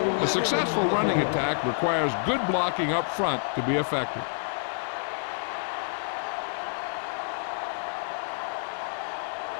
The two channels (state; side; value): silent; right; 59 dB below the other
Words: A successful running attack requires good blocking up front to be effective.